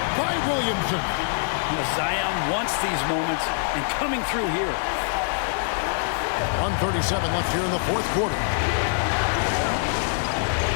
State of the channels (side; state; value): right; silent; digital silence